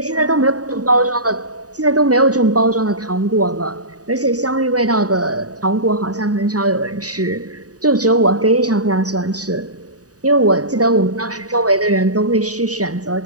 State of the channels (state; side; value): late; left; 0.67 ms